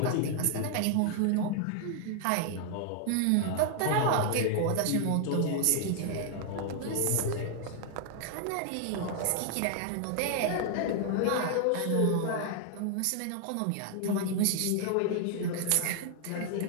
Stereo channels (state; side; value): different; both; correlation 0.00